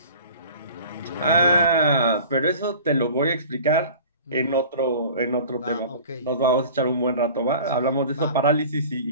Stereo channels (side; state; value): both; inverted; correlation -0.43